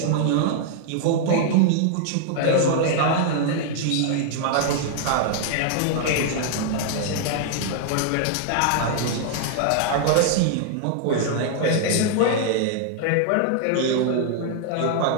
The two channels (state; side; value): different; both; correlation -0.01